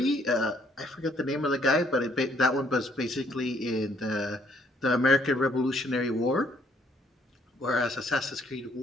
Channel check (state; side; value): normal; both; correlation 0.67